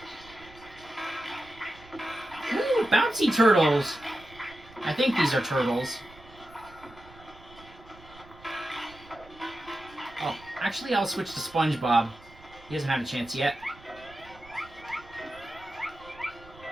Ooh, bouncy turtles! I think these are turtles. Oh, actually I'll switch to SpongeBob. He hasn't had a chance yet.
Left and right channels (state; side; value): noise; right; rumble, 22 dB below the sound